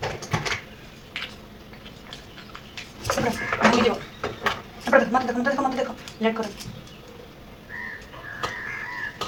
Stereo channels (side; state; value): both; identical; correlation 1.00